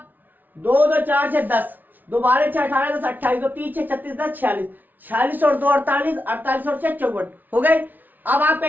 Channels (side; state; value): left; late; 0.084 ms